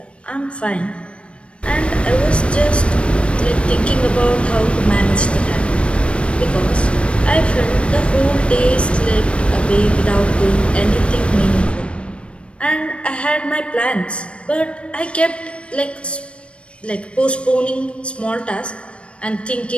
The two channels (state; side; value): late; right; 0.060 ms